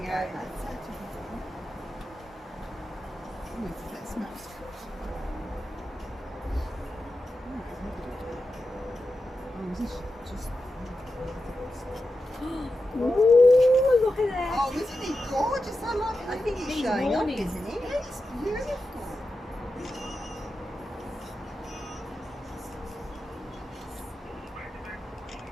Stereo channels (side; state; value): both; normal; correlation 0.90